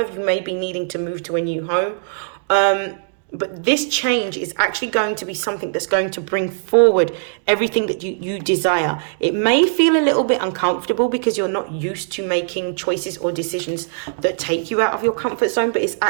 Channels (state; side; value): silent; left; digital silence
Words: you may be needing to move to a new home. But this change is actually going to be something that's going to bring forward everything that you desire. It may feel a little bit uncomfortable because you're not used to making choices or decisions that take you out of your comfort zone, but it's